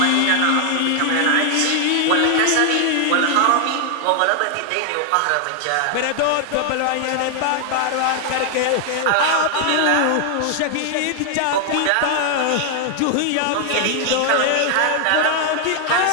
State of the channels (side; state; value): both; different; correlation 0.00